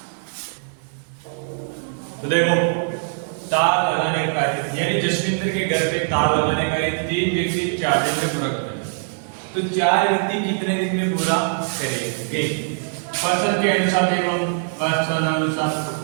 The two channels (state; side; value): silent; left; digital silence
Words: तो देखो तार लगाने का कार्य, यानी जसविंदर के घर पे तार लगाने का 3 व्यक्ति 4 दिन में पूरा करेंगे। तो 4 व्यक्ति कितने दिन में पूरा करेंगे? पर्सन के अनुसार देखो, अनुसार